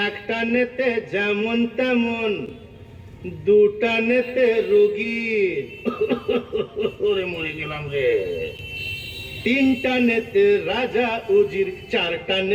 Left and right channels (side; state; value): both; identical; correlation 1.00